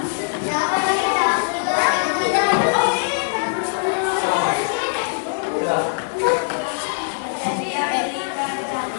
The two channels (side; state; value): right; silent; digital silence